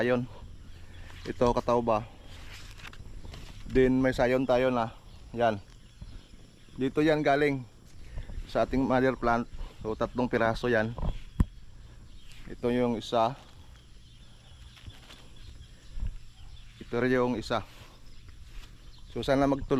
Ito katawba. Then may sayon tayo na. Yan. Dito yan galing sa ating mother plant. So 3 piraso yan. Ito yung isa. Ito rin yung isa. So sana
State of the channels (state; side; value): identical; both; correlation 1.00